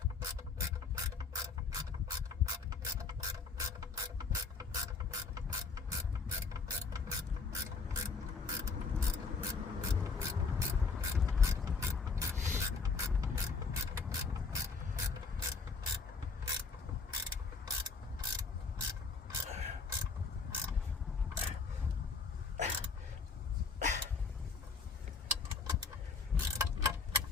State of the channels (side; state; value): right; quieter; 4.7 dB